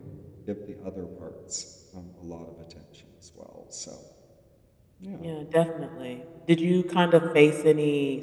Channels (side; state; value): both; identical; correlation 1.00